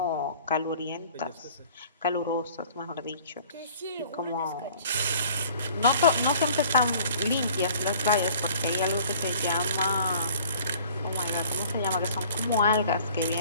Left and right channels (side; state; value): both; inverted; correlation -0.51